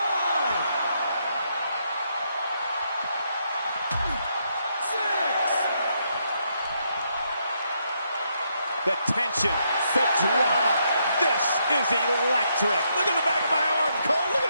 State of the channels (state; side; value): inverted; both; correlation -0.77